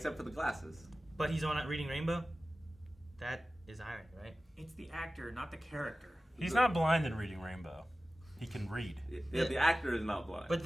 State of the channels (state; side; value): normal; both; correlation 0.96